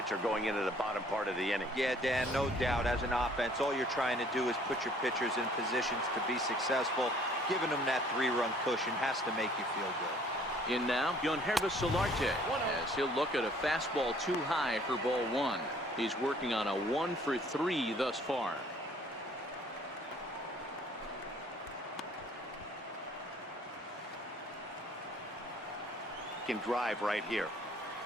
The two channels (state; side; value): normal; both; correlation 0.57